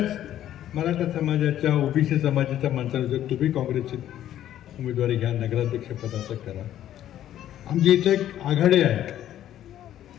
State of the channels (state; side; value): quieter; right; 11.9 dB